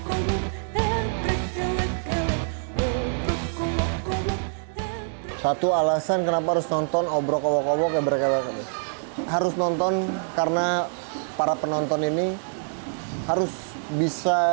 Satu alasan kenapa harus nonton Obrok Owok Ebrek harus nonton karena para penonton ini harus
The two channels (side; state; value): left; silent; digital silence